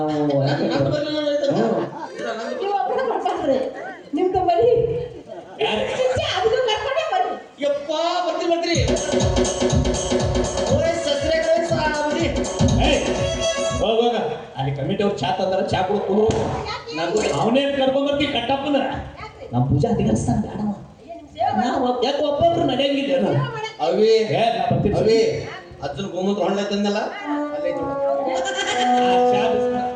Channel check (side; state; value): both; identical; correlation 1.00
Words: ನೀವು ಒಬ್ಬರ ಬರ್ಬಾರ್ದ್ರಿ. ನಿಮ್ದು ಬರೀ ಯಾರು ಅದನ್ನು ಕರ್ಕೊಂಡೇ ಬರ್ರಿ. ಯಪ್ಪ ಬರ್ತೀನಿ ಓಯ್ ಸಸ್ರೆ ಸಾವದಿ ಹೋಗ ಅಲ್ಲಿ ಕಮಿಟಿ ಅವ್ರು ಚಾ ತಂದಾರ ಚಾ ಕುಡಿದು ನಾನು ಅವನೇ ಕರ್ಕೊಂಡ್ ಬರ್ತೀವಿ ಕಟ್ಟಪ್ಪನ ನಮ್ಮ ಪೂಜಾ ಅಧಿಕಾರಿಸ್ತಾನ ಬೇಡವ ನಾವು ಯಾಕೆ ಒಬ್ಬೊಬ್ರು ನಡೆಯಂಗಿಲ್ಲ ಅವಿ ಏ ನಾ ಬರ್ತೀನಿ ಅವಿ ಅಜ್ಜನ ಗೋಮೂತ್ರ ಹೊಳ್ಳೆ ತಂದಲ್ಲ ಅಲ್ಲೇ ಆ ಚಾ ಬಿಸ್ನ-